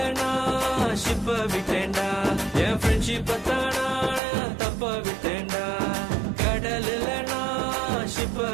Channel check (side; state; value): left; drops out; at 4.2 s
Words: நான் ஷிப்ப விட்டேன்டா, என் ஃப்ரெண்ட்ஷிப்ப தானா தப்ப விட்டேன்டா. கடலுல நான் ஷிப்ப